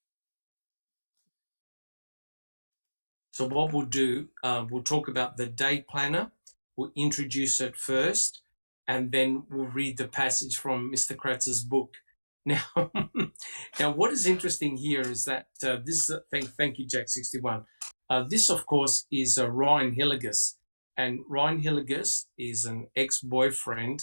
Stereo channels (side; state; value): both; inverted; correlation -1.00